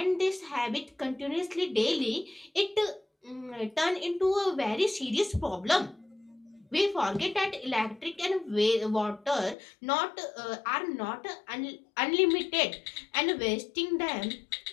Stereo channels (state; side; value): drops out; right; at 9.6 s